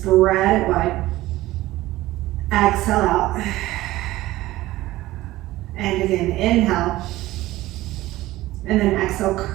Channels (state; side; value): quieter; left; 17.0 dB